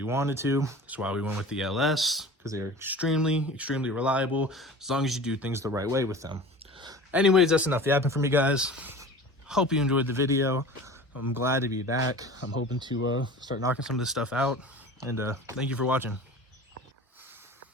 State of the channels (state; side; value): normal; both; correlation 0.39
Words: wanted to. That's why we went with the LS, because they're extremely, extremely reliable as long as you do things the right way with them. Anyways, that's enough yapping for me, guys. Hope you enjoyed the video. I'm glad to be back. I'm hoping to start knocking some of this stuff out. And thank you for watching.